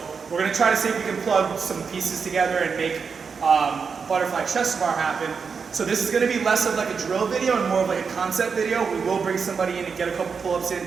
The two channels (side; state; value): left; quieter; 5.7 dB